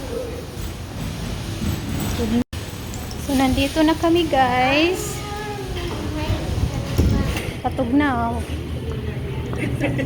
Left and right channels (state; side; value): identical; both; correlation 1.00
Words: So, nandito na kami, guys. Patog na, oh.